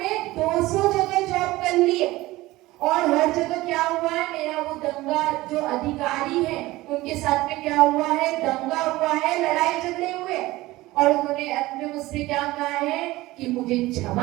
200 जगह जॉब कर ली है और हर जगह क्या हुआ है, मेरा वो दंगा, जो अधिकारी है उनके साथ में क्या हुआ है, दंगा हुआ है, लड़ाई झगड़े हुए, और उन्होंने अंत में मुझसे क्या कहा है कि मुझे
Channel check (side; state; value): left; quieter; 18.6 dB